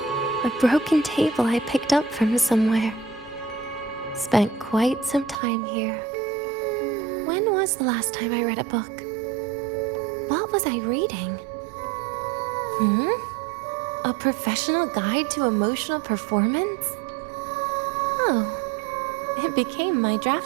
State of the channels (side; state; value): left; drops out; at 5.4 s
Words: A broken table I picked up from somewhere. Spent quite some time here. When was the last time I read a book? What was I reading? A professional guide to emotional performance? Oh, it became my